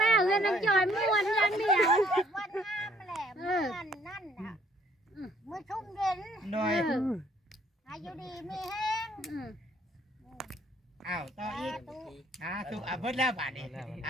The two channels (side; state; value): both; normal; correlation 0.63